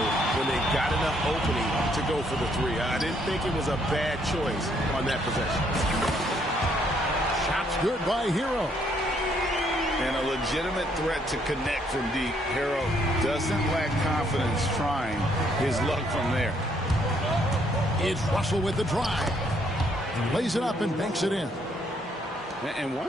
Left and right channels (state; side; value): normal; both; correlation 0.69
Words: when they got enough opening to go for the three. I didn't think it was a bad choice on that possession. Shot's good by Hero. And a legitimate threat to connect from deep. Hero doesn't lack confidence trying his luck from there. It's Russell with the drive. Lays it up and banks it in. And